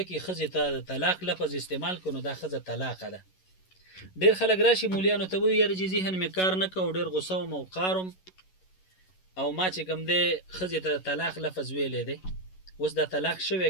کې ښځې ته د طلاق لفظ استعمال کړو، نو دا ښځه طلاقه ده. ډېر خلک راشي مولیانو ته وایي یاره چې ذهن مې کار نه کوو، ډېر غوسه وم او قارم او ما چې کوم دی ښځې ته د طلاق لفظ ویلی دی. اوس دا طلاق شوی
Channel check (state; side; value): late; right; 11 ms